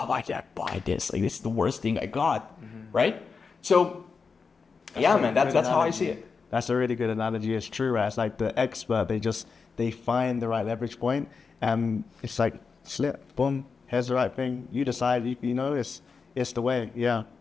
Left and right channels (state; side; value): quieter; right; 5.1 dB